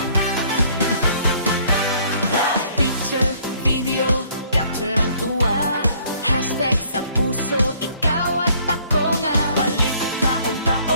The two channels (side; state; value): both; inverted; correlation -0.60